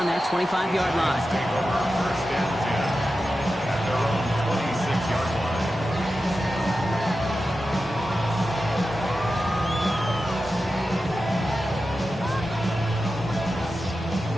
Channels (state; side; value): normal; both; correlation 0.92